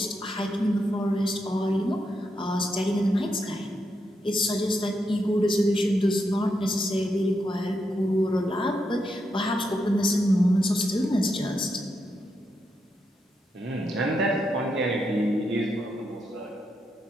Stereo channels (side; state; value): both; normal; correlation 0.83